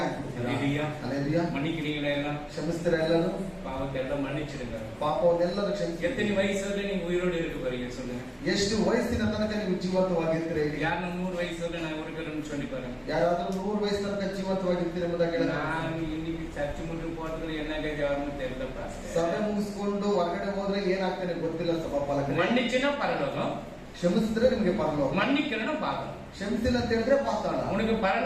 ಅಲ್ಲೇಲೂಯಾ. மன்னிக்கிறீங்களா எல்லாம்? ಕ್ಷಮಿಸ್ತೀರಾ ಎಲ್ಲರೂ? பாவத்தை எல்லாம் மன்னிச்சிடுங்க. ಪಾಪವನ್ನೆಲ್ಲರೂ ಕ್ಷಮಿಸಿ. எத்தனை வயசுல நீங்க உயிரோடு இருக்க போறீங்க சொல்லுங்க? ಎಷ್ಟು ವಯಸ್ಸಿನ ತನಕ ನೀವು ಜೀವಂತವಾಗಿರ್ತೀರಾ? யாரும் 100 வயசுல நான் இருக்கிறேன்னு சொல்லி பாருங்க. ಯಾರಾದ್ರೂ 100 ವಯಸ್ಸು ತನಕ ಜೀವಂತವಾಗಿರ್ತೀರಾ ಎಂಬುದಾಗಿ ಹೇಳಿದ್ರೆ, நான் இன்னைக்கு சர்ச்சு முட்டு போறதுல என்ன கேட்கணும் தெரியல. ಸಭೆ ಮುಗಿಸ್ಕೊಂಡು ಹೊರಗಡೆ ಹೋದ್ರೆ ಏನಾಗ್ತಾನೆ ಗೊತ್ತಿಲ್ಲ. ಸಭಾಪಾಲಕರು மன்னிச்சுன்னா பரலோகம், ಕ್ಷಮಿಸಿದ್ರೆ ನಿಮಗೆ ಪರಲೋಕ, மன்னிக்கலன்னா பாதம். ಕ್ಷಮಿಸಿಲ್ಲ ಅಂತ ಹೇಳಿದ್ರೆ ಪಾತಾಳ. உனக்கு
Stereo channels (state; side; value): identical; both; correlation 1.00